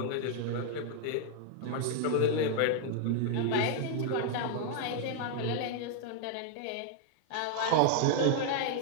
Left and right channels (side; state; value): both; different; correlation 0.00